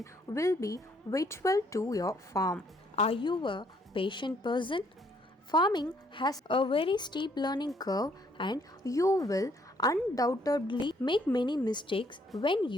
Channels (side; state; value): both; normal; correlation 0.67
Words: will be vital to your farm. Are you a patient person? Farming has a very steep learning curve and you will undoubtedly make many mistakes when